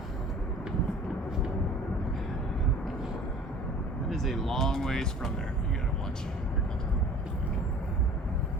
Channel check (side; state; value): both; normal; correlation 0.46